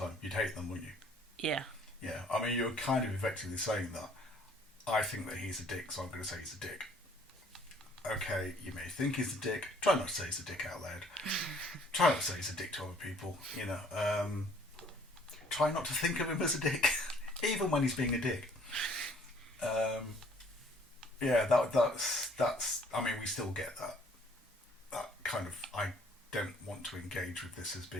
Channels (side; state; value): both; normal; correlation 0.59